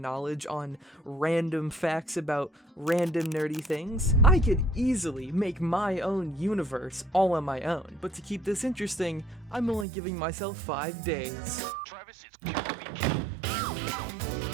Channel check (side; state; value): left; drops out; at 9.9 s